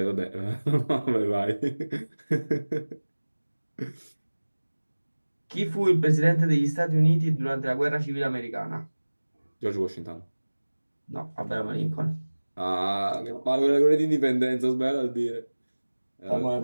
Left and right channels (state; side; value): inverted; both; correlation -1.00